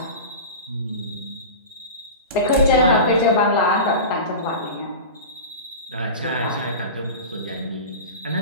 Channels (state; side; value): inverted; both; correlation -0.30